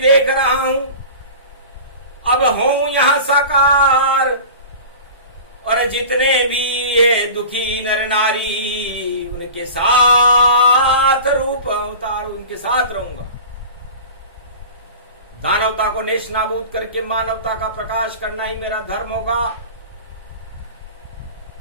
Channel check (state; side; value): inverted; both; correlation -0.37